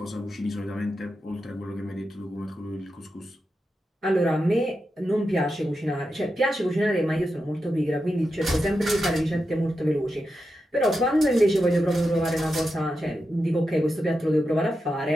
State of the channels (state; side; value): normal; both; correlation 0.88